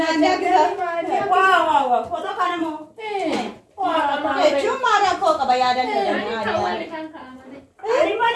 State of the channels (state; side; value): identical; both; correlation 1.00